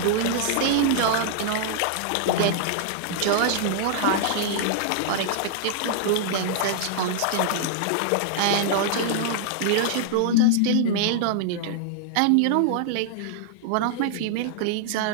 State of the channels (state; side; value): different; both; correlation -0.01